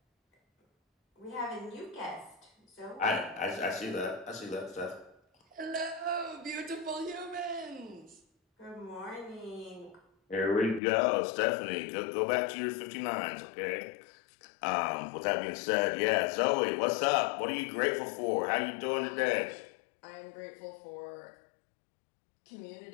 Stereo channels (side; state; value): right; drops out; at 10.8 s